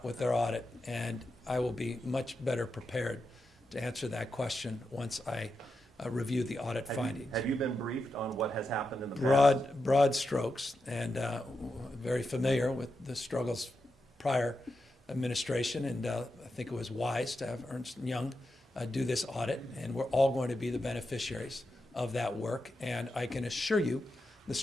with their audit, and I will be much better prepared to answer that question once I review the audit findings. Have you been briefed on what has happened in the past? Broad strokes, and very familiar with the struggles prior administration, and I think it was wise to have Ernst & Young do this audit, and we're all going to be the beneficiaries of that work. And I can assure you, the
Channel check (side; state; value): both; normal; correlation 0.87